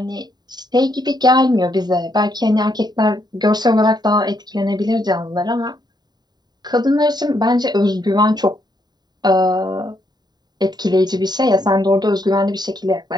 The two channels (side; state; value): left; late; 0.20 ms